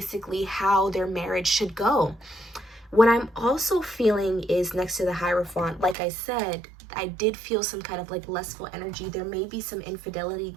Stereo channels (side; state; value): left; drops out; at 6.0 s